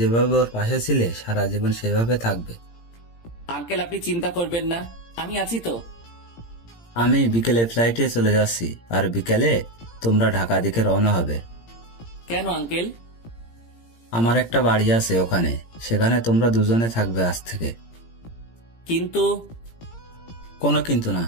ওর পাশে ছিলে সারা জীবন সেভাবে থাকবে। আঙ্কেল আপনি চিন্তা করবেন না, আমি আছি তো। আমি বিকেলে ফ্লাইটে চলে যাচ্ছি, আর বিকেলে তোমরা ঢাকা দিকে রওনা হবে। কেন আঙ্কেল? আমার একটা বাড়ি আছে ওখানে, সেখানে তোমরা দুজনে থাকবে আজ থেকে। কিন্তু কোনো কিন্তু না,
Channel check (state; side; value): late; right; 17 ms